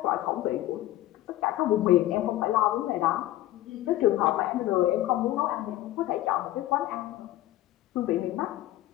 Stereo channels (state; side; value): quieter; right; 15.0 dB